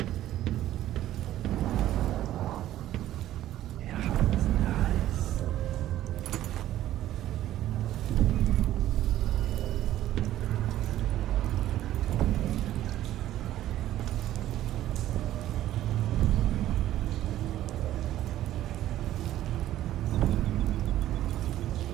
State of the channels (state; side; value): quieter; left; 13.4 dB